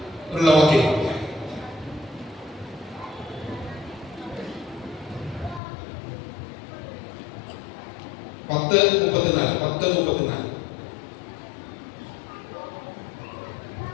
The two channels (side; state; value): right; drops out; at 5.6 s